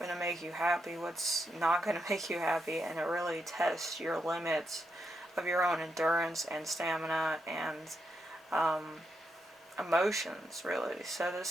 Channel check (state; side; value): normal; both; correlation 0.82